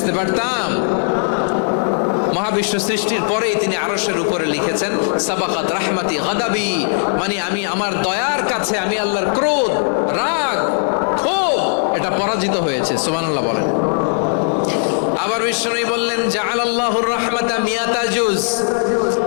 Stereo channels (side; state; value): right; silent; 67 dB below the other